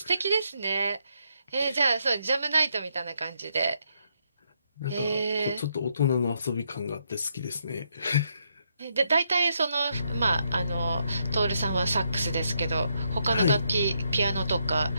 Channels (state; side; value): inverted; both; correlation -0.77